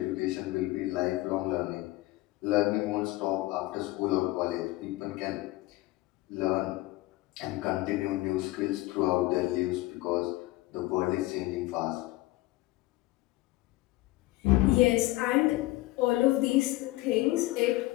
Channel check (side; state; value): right; quieter; 18.8 dB